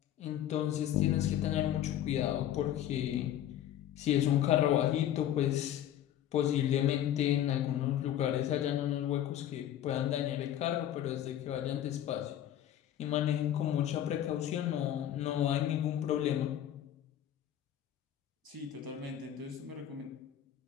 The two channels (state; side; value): quieter; right; 11.4 dB